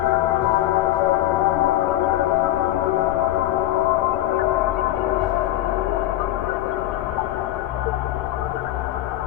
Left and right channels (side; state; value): right; quieter; 14.4 dB